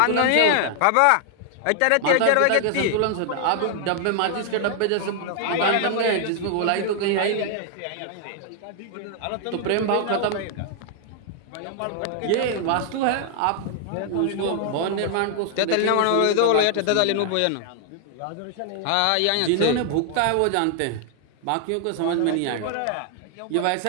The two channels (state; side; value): different; both; correlation 0.00